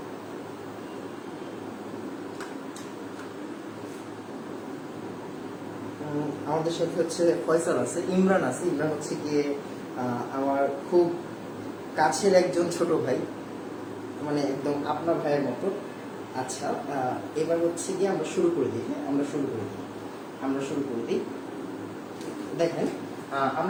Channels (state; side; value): identical; both; correlation 1.00